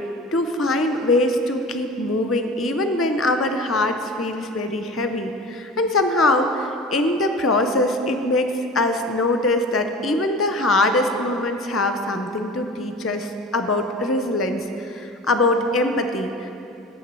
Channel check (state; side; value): normal; both; correlation 0.37